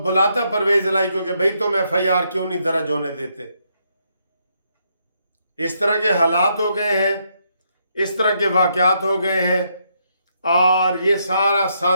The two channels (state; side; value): inverted; both; correlation -0.76